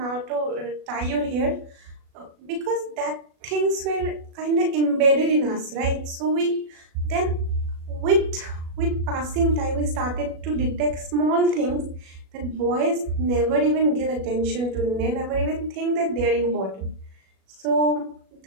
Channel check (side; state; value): left; late; 37 ms